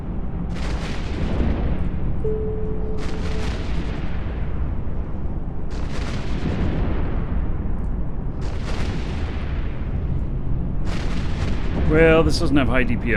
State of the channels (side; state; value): both; identical; correlation 1.00